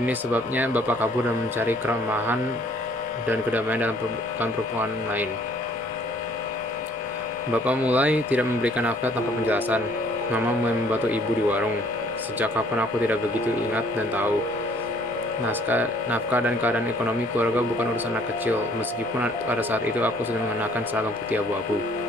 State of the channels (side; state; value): both; normal; correlation 0.59